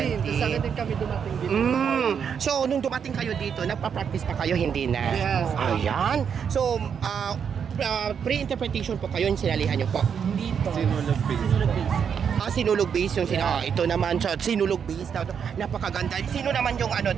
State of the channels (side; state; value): left; quieter; 7.3 dB